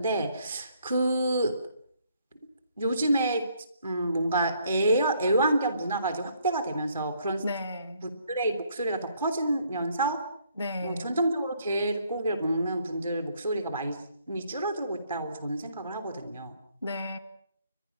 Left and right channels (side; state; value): both; inverted; correlation -0.67